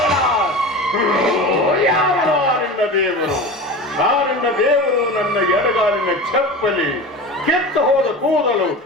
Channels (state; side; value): normal; both; correlation 0.31